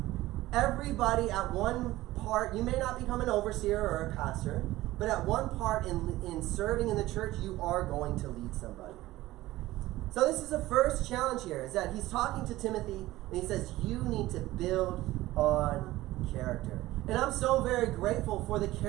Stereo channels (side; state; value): left; quieter; 17.0 dB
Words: Everybody at one part, you may not become an overseer or a pastor, but at one part in serving in the church, you are going to lead somebody. So this is the first challenge here, is that he's talking to Timothy, and he says, you need to build on character. And I'm so very grateful for the